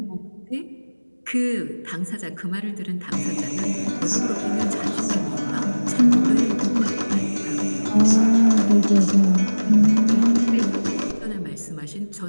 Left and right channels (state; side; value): inverted; both; correlation -1.00